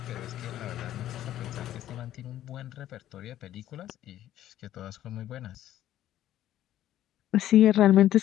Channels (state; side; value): quieter; right; 12.6 dB